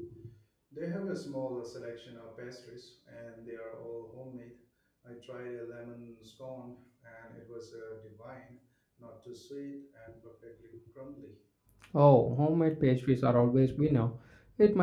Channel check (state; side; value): identical; both; correlation 1.00